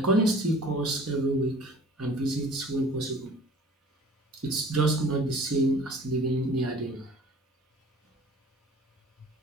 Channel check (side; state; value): both; normal; correlation 0.48